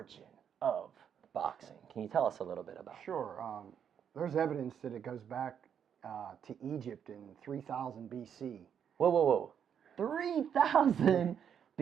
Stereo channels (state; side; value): quieter; left; 8.2 dB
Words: of boxing. Can you tell us a little bit about it? Sure. There's evidence that it goes back to Egypt in 3000 BC. Whoa. 3000